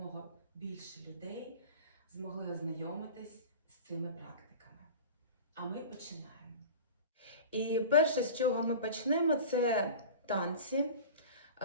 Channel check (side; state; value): both; inverted; correlation -0.36